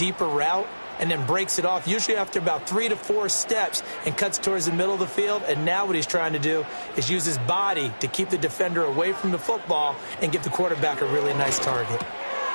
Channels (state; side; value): inverted; both; correlation -1.00